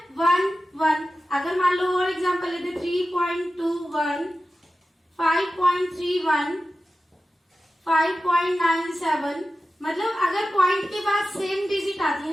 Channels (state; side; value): normal; both; correlation 0.94